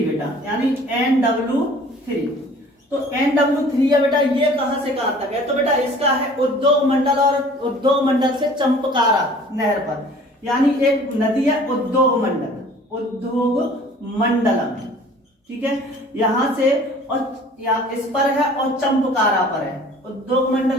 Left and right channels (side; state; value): both; normal; correlation 0.49